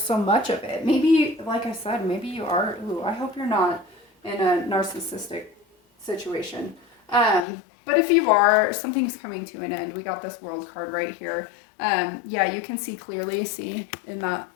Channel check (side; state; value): right; drops out; at 7.5 s